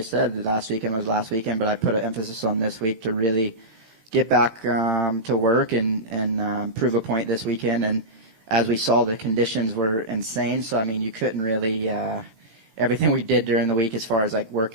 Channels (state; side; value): late; left; 18 ms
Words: said, last weekend was last weekend, but I put an emphasis on this week to really get back to work and prove a point this weekend. And as we saw, the conditions were insane. So, I mean, you couldn't really everything we did during the week as far as, like,